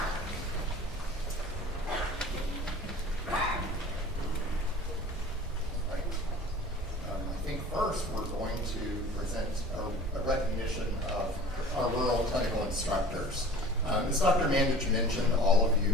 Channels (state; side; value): normal; both; correlation 0.43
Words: I think first we're going to present a recognition of our rural clinical instructors. As Dr. Mandich mentioned, all of